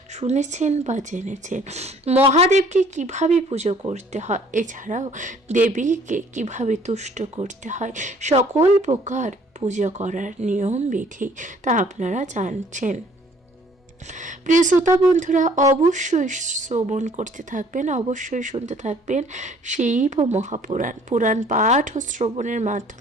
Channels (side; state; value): both; normal; correlation 0.57